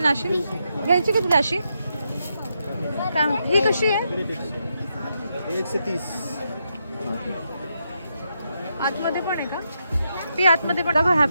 ना अशी? घ्यायची का तुला अशी? काय ही कशी आहे? 130. आतमध्ये पण आहे का? ती आतमध्ये पण बघा.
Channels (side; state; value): both; inverted; correlation -0.82